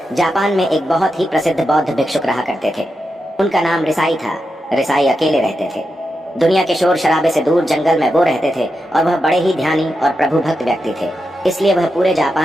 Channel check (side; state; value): both; normal; correlation 0.88